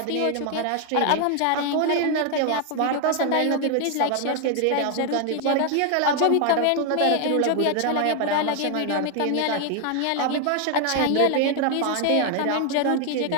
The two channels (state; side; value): different; both; correlation 0.00